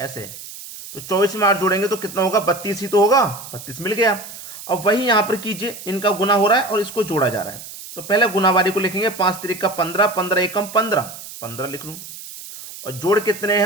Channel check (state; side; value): noise; right; hiss, 13 dB below the sound